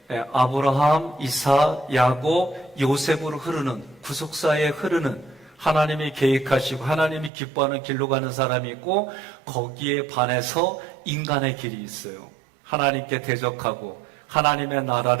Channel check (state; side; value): drops out; left; at 7.3 s